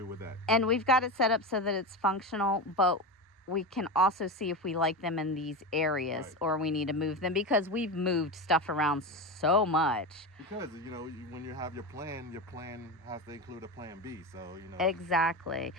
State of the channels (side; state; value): both; normal; correlation 0.20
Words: with that. And we've got it set up so that it's functional, but we can also see if we like them in these areas or we need to move them because we've moved stuff around so much. Because, when you have your plan has to include a plan B. So, Exactly.